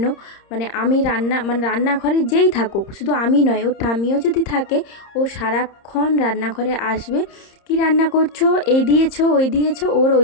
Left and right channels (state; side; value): late; right; 30 ms